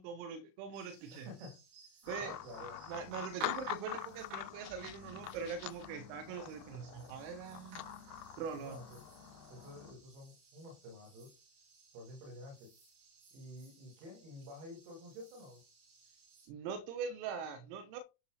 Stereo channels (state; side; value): late; left; 31 ms